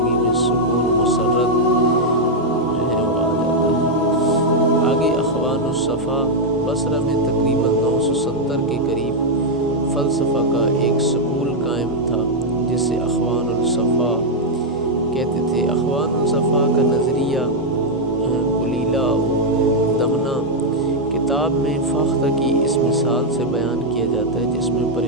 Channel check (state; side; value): normal; both; correlation -0.01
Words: الصفا بصرہ میں تقریباً 970 کے قریب فلسفہ کا ایک سکول قائم تھا جسے اخوان الصفا کہتے تھے۔ اخوان الصفا کا نظریہ قلیلہ دمنہ کتاب میں فاختہ کی اس مثال سے بیان کیا جاتا ہے، جس میں